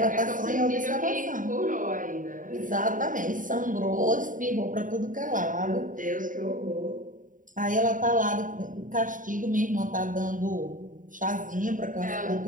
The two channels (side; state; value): left; late; 0.38 ms